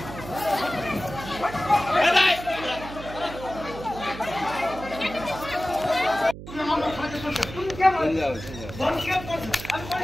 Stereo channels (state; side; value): noise; right; hum, 12 dB below the sound